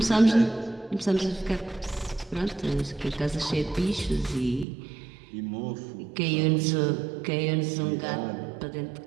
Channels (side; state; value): left; drops out; at 4.7 s